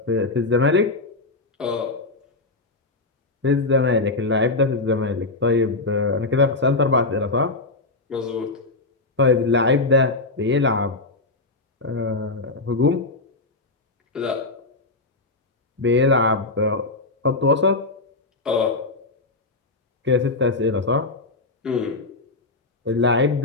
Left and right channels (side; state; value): right; quieter; 3.2 dB